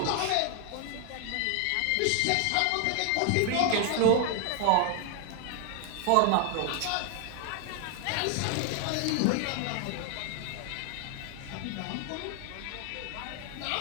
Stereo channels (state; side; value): different; both; correlation 0.00